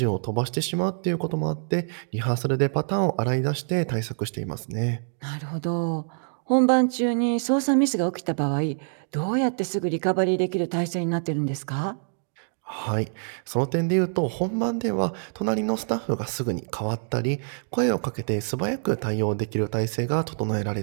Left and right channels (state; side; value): silent; left; digital silence